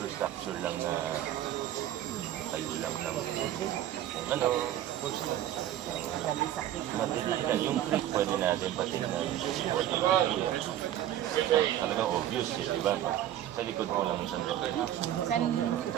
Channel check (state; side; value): quieter; left; 12.2 dB